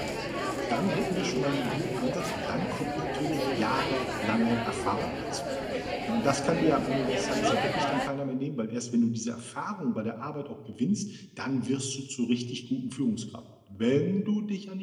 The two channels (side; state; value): both; identical; correlation 1.00